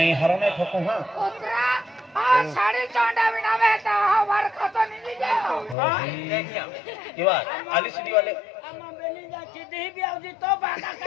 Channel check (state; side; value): drops out; right; at 5.8 s